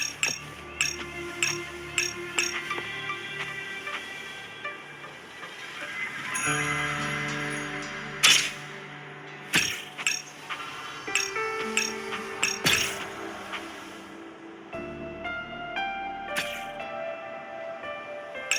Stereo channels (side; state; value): both; identical; correlation 1.00